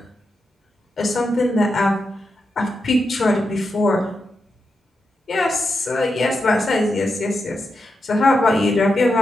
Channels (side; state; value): both; normal; correlation 0.87